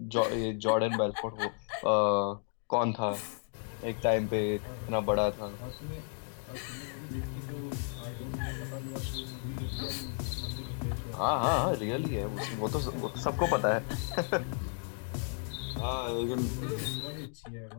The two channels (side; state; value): right; silent; 55 dB below the other